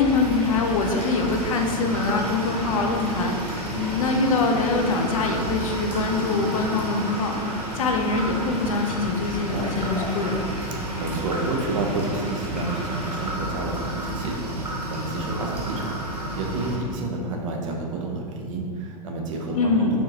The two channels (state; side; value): normal; both; correlation 0.00